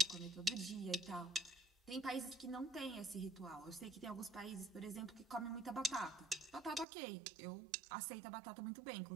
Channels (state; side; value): drops out; left; at 6.9 s